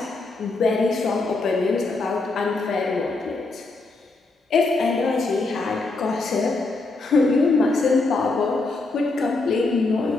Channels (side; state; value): right; quieter; 3.4 dB